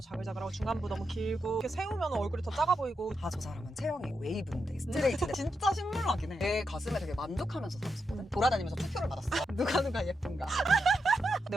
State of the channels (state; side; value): normal; both; correlation 0.85